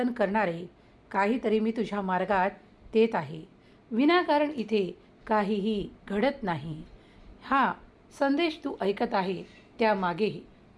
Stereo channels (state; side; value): identical; both; correlation 1.00